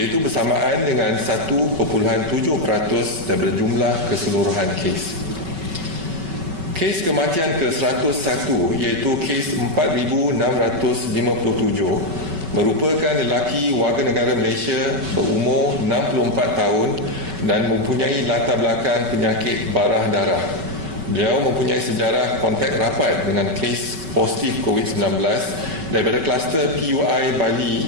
bersamaan dengan 1.7% daripada jumlah keseluruhan kes. Kes kematian ke-101 iaitu kes 4,657 merupakan lelaki warga negara Malaysia berumur 64 tahun dan mempunyai latar belakang penyakit barah darah. Beliau mempunyai sejarah kontak rapat dengan kes positif COVID-19 daripada kluster PUI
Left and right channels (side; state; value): left; late; 5.2 ms